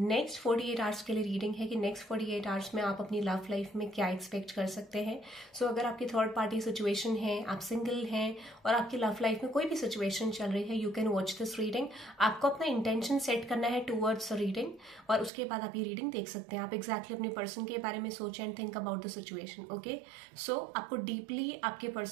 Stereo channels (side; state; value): left; drops out; at 15.3 s